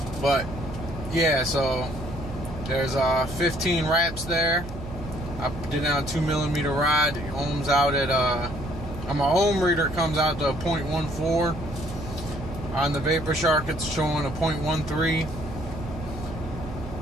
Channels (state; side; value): noise; right; hum, 11 dB below the sound